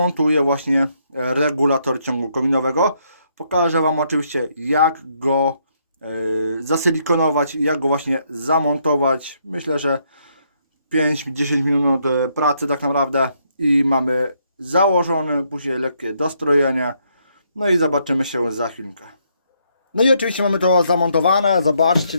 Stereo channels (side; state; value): both; inverted; correlation -0.73